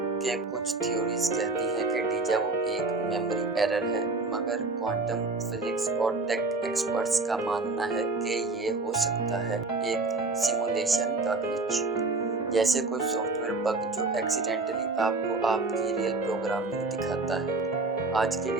के कुछ थ्योरीज कहती हैं कि डीजा वू एक मेमोरी एरर है, मगर क्वांटम फिजिक्स और टेक एक्सपर्ट्स का मानना है कि ये हो सकता है एक सिमुलेशन का ग्लिच, जैसे कोई सॉफ्टवेयर बग जो एक्सीडेंटली आपको आपकी रियल प्रोग्रामिंग दिखाता है। आज के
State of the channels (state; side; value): quieter; left; 3.4 dB